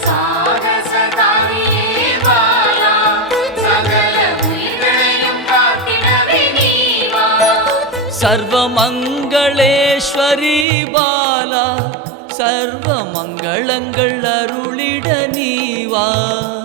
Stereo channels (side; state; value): left; drops out; at 10.7 s